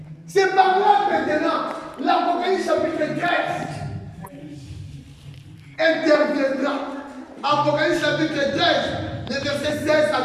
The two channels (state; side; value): identical; both; correlation 1.00